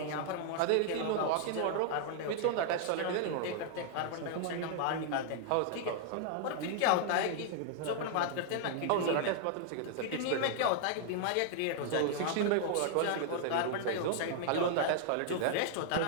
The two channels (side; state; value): both; different; correlation -0.01